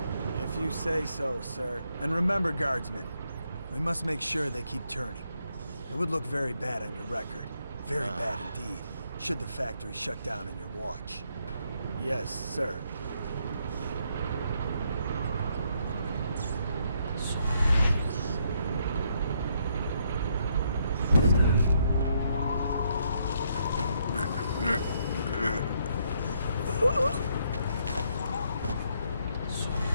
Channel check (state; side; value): inverted; both; correlation -0.74